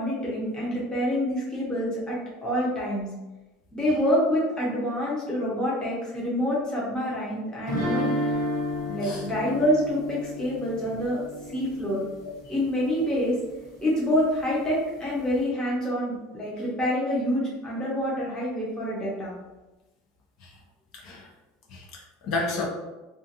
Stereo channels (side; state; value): both; normal; correlation 0.44